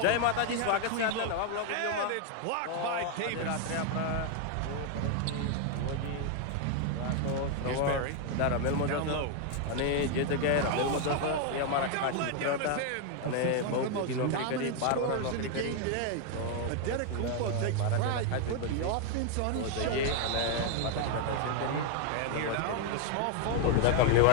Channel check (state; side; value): different; both; correlation 0.00